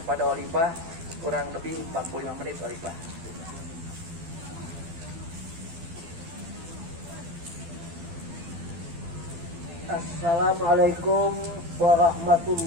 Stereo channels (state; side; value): late; left; 12 ms